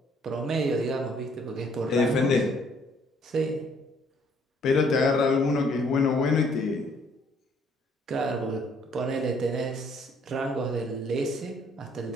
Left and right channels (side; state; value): both; normal; correlation 0.63